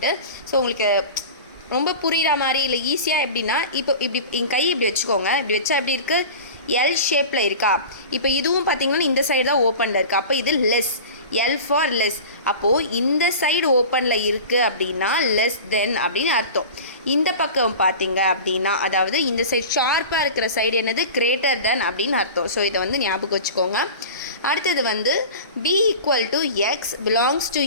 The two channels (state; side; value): inverted; both; correlation -0.35